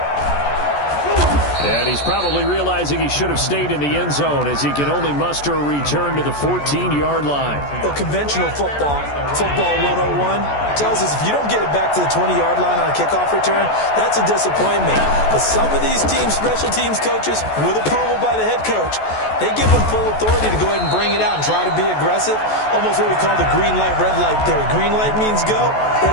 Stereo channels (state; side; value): late; right; 14 ms